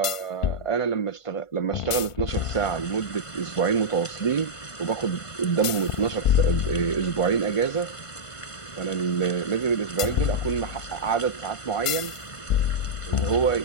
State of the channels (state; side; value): late; right; 1.5 ms